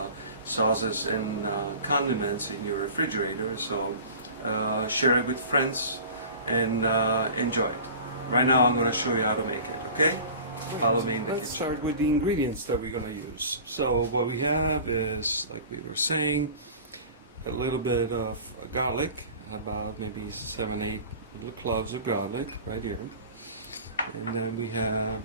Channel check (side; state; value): both; inverted; correlation -0.39